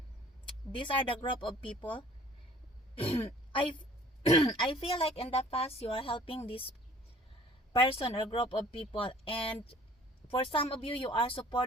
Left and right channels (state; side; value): normal; both; correlation 0.52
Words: these are the group of people. I I feel like in the past you are helping this person or group of people, and for some of you, you are